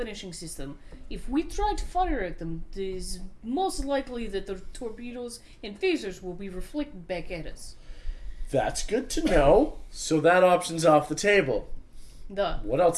system. If we try to fire at them, it is most likely that the torpedoes and phasers will be reflected back at us. That's good to know. So that option's off the table. Done. What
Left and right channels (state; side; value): identical; both; correlation 1.00